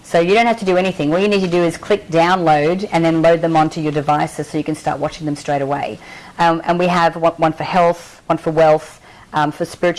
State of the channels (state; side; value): identical; both; correlation 1.00